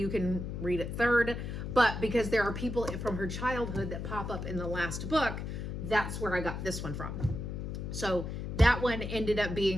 can read it third. But because there are people from her childhood that pop up in the last book, that's where I got this one from. So that one ended up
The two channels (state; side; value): noise; left; hum, 5 dB below the sound